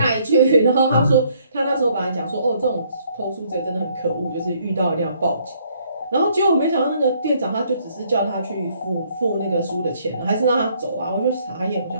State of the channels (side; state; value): both; inverted; correlation -0.66